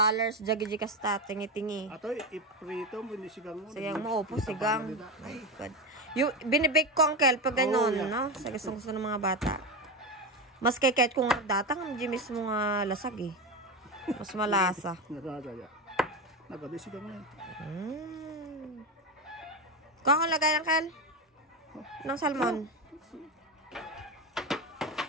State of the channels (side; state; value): both; normal; correlation 0.17